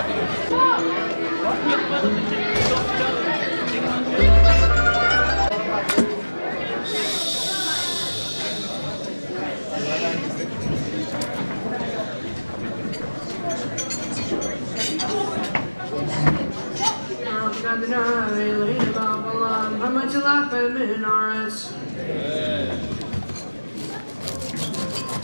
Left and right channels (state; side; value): inverted; both; correlation -1.00